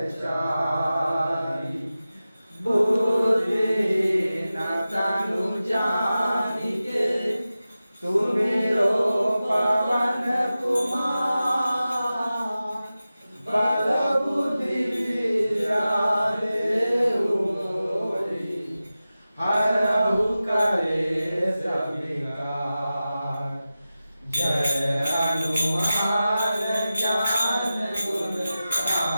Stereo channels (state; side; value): inverted; both; correlation -0.95